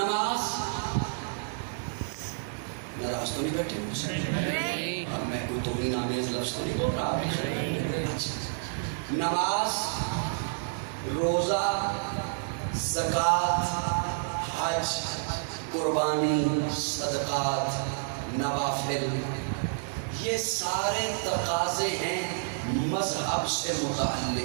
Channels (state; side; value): silent; left; digital silence